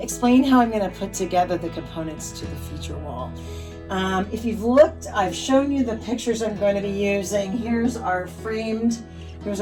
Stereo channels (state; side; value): identical; both; correlation 1.00